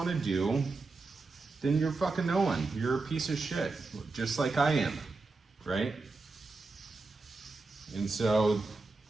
to do, then you're fucking no one. You're a piece of shit, just like I am, right? And so,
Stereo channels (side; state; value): left; quieter; 3.7 dB